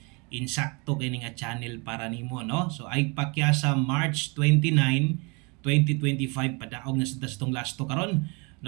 insakto kini nga channel para nimo, no? So ay pakyasa March 29, 2025 padaog na sa tong lasto karon,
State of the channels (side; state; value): left; quieter; 30.3 dB